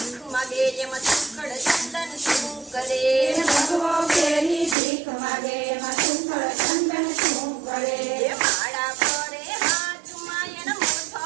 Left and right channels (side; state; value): left; drops out; at 4.8 s